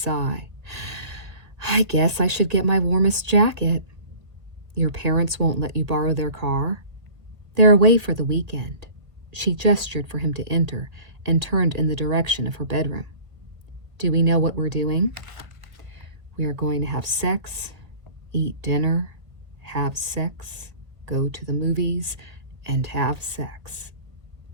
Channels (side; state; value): left; late; 1.8 ms